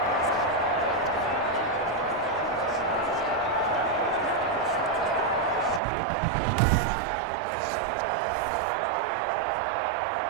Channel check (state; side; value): drops out; left; at 5.8 s